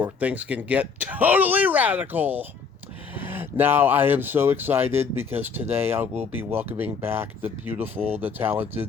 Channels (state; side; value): quieter; right; 5.5 dB